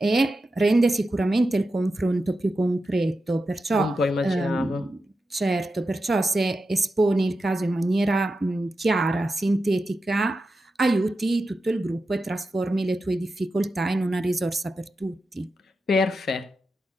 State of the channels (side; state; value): both; normal; correlation 0.90